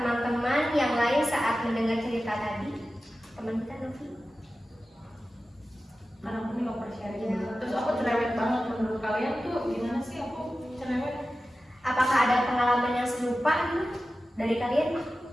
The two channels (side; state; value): both; normal; correlation 0.94